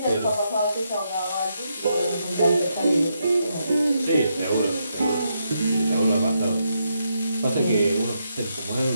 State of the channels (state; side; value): inverted; both; correlation -0.81